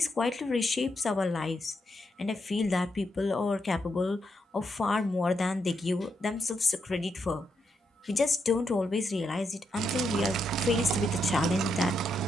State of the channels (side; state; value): both; normal; correlation 0.81